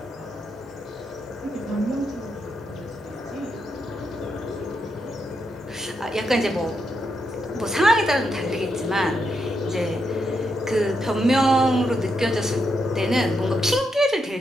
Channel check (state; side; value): normal; both; correlation 0.82